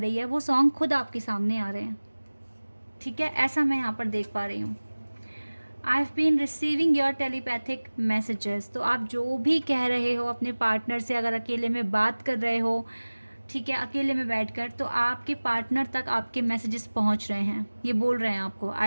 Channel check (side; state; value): both; inverted; correlation -1.00